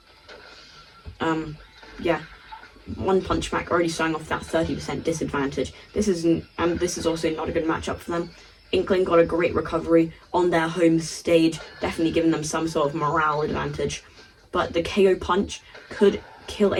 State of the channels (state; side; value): identical; both; correlation 1.00